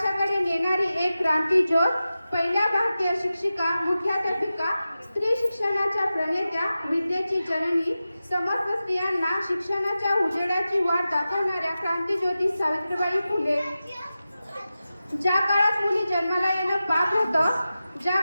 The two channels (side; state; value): both; inverted; correlation -0.94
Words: नेणारी एक क्रांती ज्योत, पहिल्या भारतीय शिक्षिका, मुख्याध्यापिका, स्त्री शिक्षणाच्या प्रणेत्या, विद्येची जननी, समस्त स्त्रियांना शिक्षणाच्या उजेडाची वाट दाखवणाऱ्या क्रांतीज्योती सावित्रीबाई फुले. ज्या काळात मुली जन्माला येणं पाप होतं, ज्या